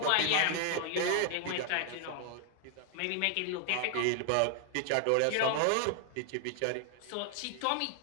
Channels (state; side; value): different; both; correlation 0.00